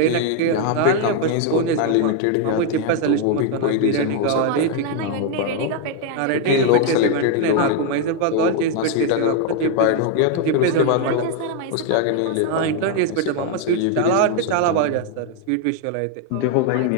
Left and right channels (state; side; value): different; both; correlation 0.01